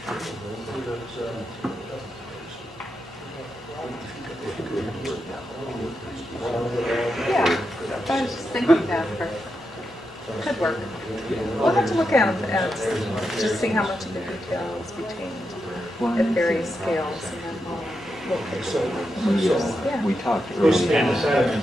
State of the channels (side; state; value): both; normal; correlation 0.86